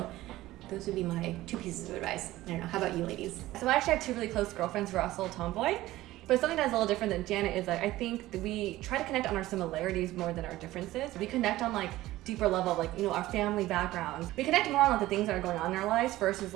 those would be my 2 pieces of advice. I don't know, how about you ladies? So I actually have 2 really close girlfriends who are also tomboy. But something that's a little different than Janet is I think that we try to connect on our similarities more than our differences. We connect on deeper level, our family backgrounds. We connect more on the things that are going on in our lives versus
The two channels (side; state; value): left; quieter; 16.5 dB